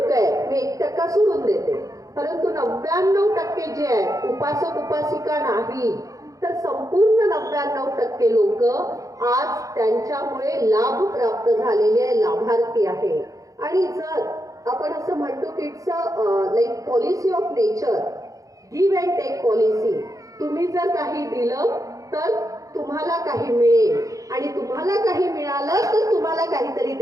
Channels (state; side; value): late; left; 0.16 ms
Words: आहेत, मी 1% सोडून देते, परंतु 99% जे आहेत उपासक उपासिका नाही, तर संपूर्ण 99% लोक आज त्यांच्यामुळे लाभ प्राप्त झालेले लाभार्थी आहे. आणि जर आपण असं म्हणतो की it's like policy of nature, give and take policy. तुम्ही जर काही दिलं तर तुम्हाला काही मिळेल आणि तुम्हाला काही मिळालं तर तुम्हाला काहीतरी